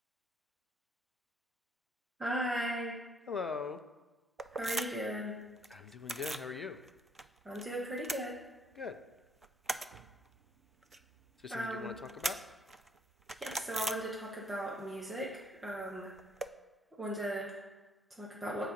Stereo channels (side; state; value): both; normal; correlation 0.66